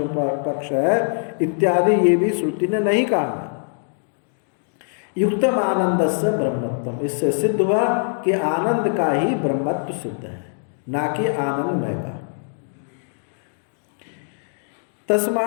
पक्ष है इत्यादि, ये भी श्रुति ने नहीं कहा। युक्तम आनंद से ब्रह्मत्वम, इससे सिद्ध हुआ कि आनंद का ही ब्रह्मत्व सिद्ध है, ना कि आनंदमय का।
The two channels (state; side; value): silent; right; digital silence